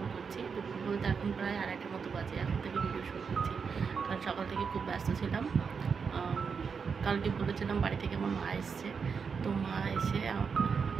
করছি। দুপুর বলতে এখন প্রায় 2:30টার মতো বাজে। এখন থেকে ভিডিও শুরু করছি, কারণ সকাল থেকে খুব ব্যস্ত ছিলাম। কালকে বলেছিলাম বাড়ি থেকে আমার মা এসছে, তো মা এসে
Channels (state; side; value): quieter; left; 5.8 dB